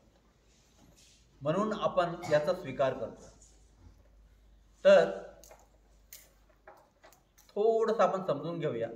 म्हणून आपण याचा स्वीकार करतो. तर थोडंसं आपण समजून घेऊया.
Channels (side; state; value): both; identical; correlation 1.00